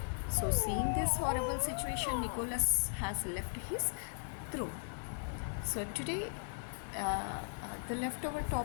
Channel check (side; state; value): right; silent; digital silence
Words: So, seeing this horrible situation, Nicholas has left his throne. So, today the leftover